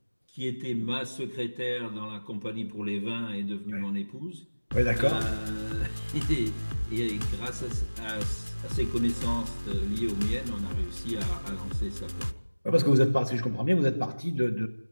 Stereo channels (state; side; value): inverted; both; correlation -1.00